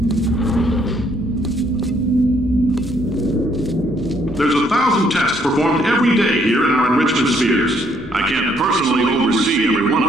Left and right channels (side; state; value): both; normal; correlation 0.68